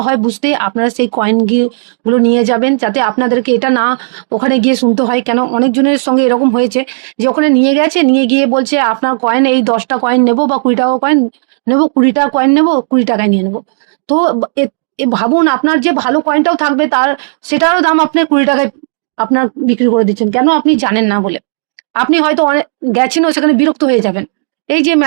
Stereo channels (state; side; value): silent; left; digital silence